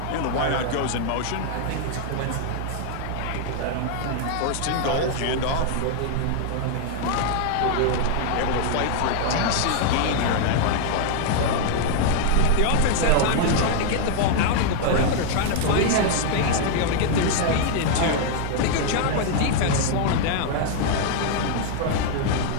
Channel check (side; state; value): both; different; correlation 0.00